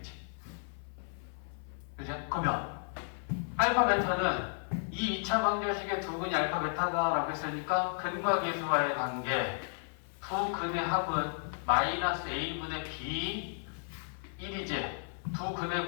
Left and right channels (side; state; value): right; silent; 55 dB below the other